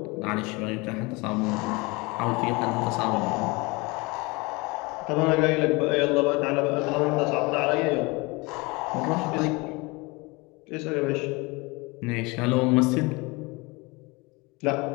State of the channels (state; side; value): quieter; right; 25.8 dB